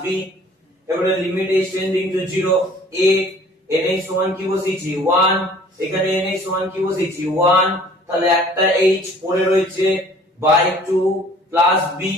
b এবারে limit h tending to 0 a nh সমান কি বসিয়েছি 1 এখানে nh সমান কি বসিয়েছি 1 তাহলে একটা h পড়ে রয়েছে বাই 2 প্লাস b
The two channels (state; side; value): normal; both; correlation 0.52